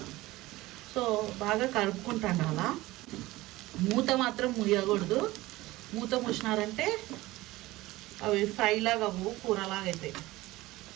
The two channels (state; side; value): quieter; left; 18.7 dB